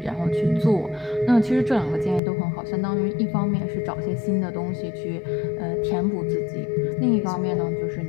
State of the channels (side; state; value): right; drops out; at 2.2 s